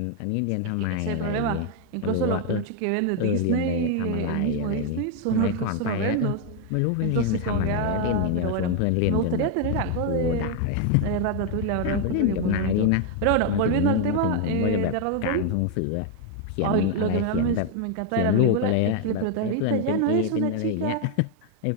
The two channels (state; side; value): different; both; correlation 0.01